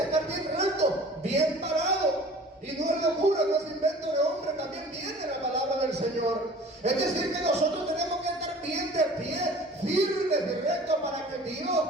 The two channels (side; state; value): both; normal; correlation 0.45